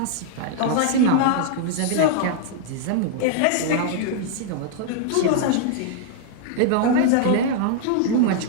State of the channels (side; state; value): both; different; correlation -0.01